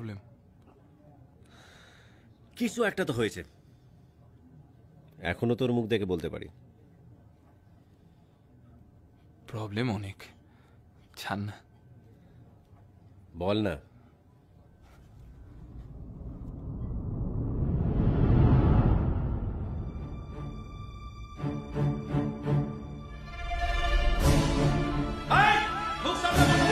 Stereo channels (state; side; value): identical; both; correlation 1.00